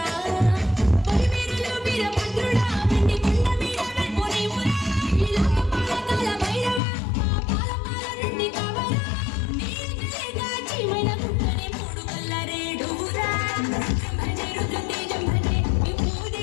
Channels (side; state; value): right; drops out; at 6.8 s